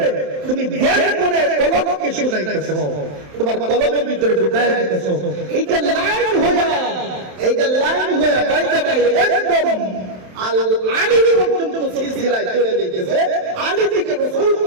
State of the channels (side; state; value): left; late; 27 ms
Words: তুমি ধ্যান করে কলবকে শুনাইতেছো, তোমার কলবের ভিতরে ঢুকায় দিতেছো। এইটা লাইন হইয়া বাইতে বাই একদম আল আলী পর্যন্ত সিলসিলায় চলে যাইতেছে, আলী থেকে রাসূল